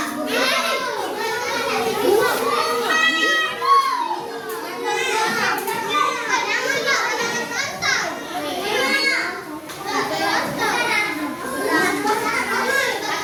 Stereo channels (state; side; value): identical; both; correlation 1.00